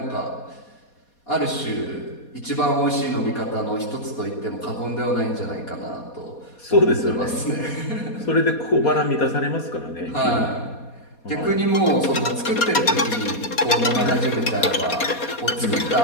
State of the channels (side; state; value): right; late; 4.2 ms